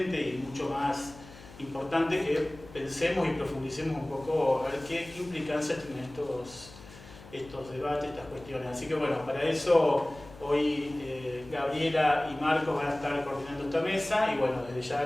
y mucho más importante que pensemos y profundicemos un poco a ver qué implicancias tienen estos debates, estas cuestiones. Así que bueno, para eso hoy Gabriela y Marcos van a estar coordinando esta mesa y bueno, desde ya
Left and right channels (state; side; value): noise; left; hum, 19 dB below the sound